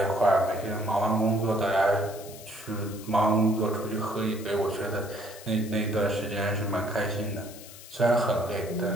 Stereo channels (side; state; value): left; noise; hiss, 17 dB below the sound